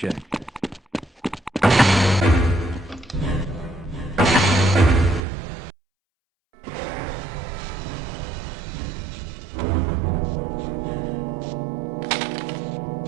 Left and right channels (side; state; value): left; drops out; at 5.2 s